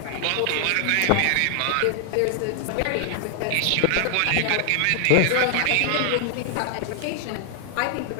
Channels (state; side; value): different; both; correlation 0.00